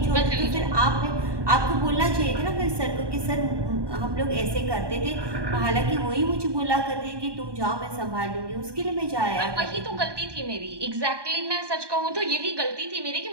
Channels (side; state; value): left; late; 1.2 ms